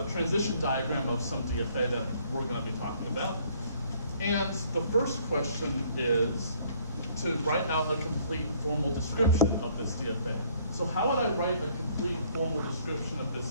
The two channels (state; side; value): inverted; both; correlation -0.61